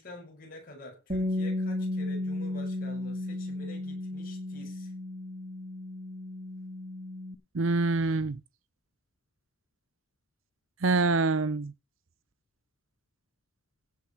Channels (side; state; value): both; normal; correlation 0.43